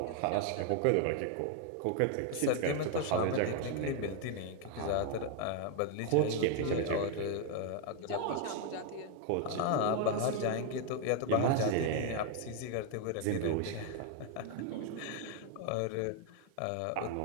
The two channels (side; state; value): both; different; correlation 0.00